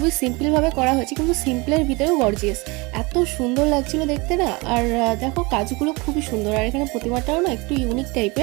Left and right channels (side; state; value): left; quieter; 25.9 dB